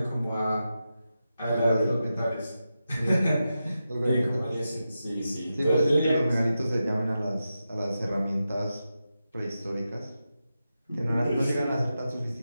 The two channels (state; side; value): inverted; both; correlation -0.90